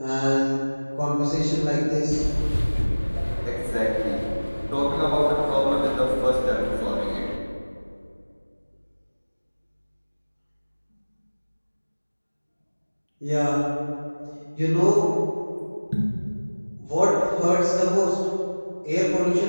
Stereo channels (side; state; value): both; inverted; correlation -1.00